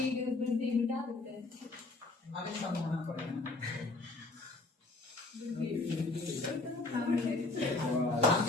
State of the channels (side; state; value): right; quieter; 3.3 dB